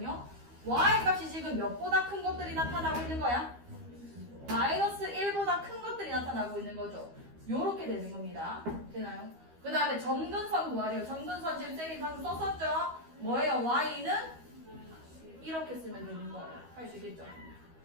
y 값이 지금 몇보다 큰 것들이 나타나고 있는 거야? 마이너스 1보다 큰 것들이 나타나고 있는 거죠. 요렇게 되는 겁니다. 되나요? 그 다음에 점근선 구하래요. 점근선 지금 쌤이 방금 썼었죠? 뭐예요? y는 이렇게 쓰면 되는 거예요. 할 수 있겠죠?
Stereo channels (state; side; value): late; left; 12 ms